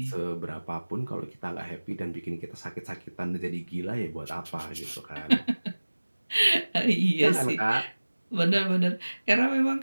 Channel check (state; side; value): inverted; both; correlation -1.00